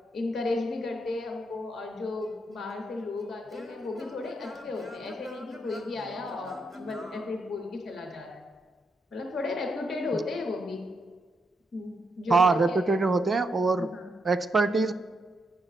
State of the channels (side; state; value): both; normal; correlation 0.80